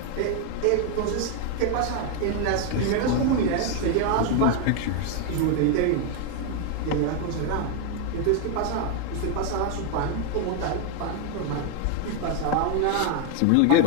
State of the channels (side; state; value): both; different; correlation 0.01